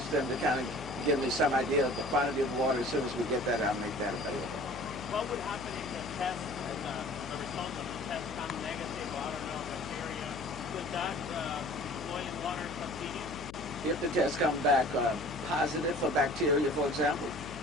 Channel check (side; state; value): left; noise; hum, 13 dB below the sound